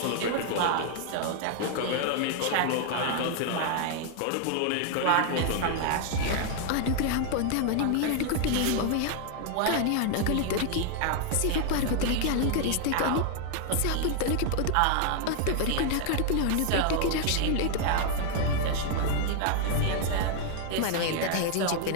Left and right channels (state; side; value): different; both; correlation 0.00